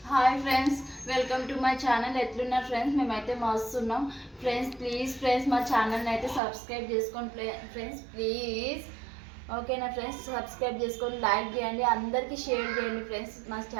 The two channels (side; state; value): left; drops out; at 6.4 s